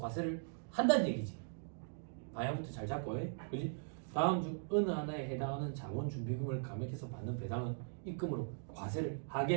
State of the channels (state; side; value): silent; left; digital silence